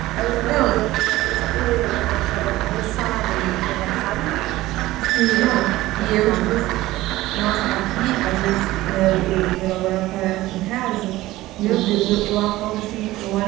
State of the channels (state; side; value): quieter; left; 17.2 dB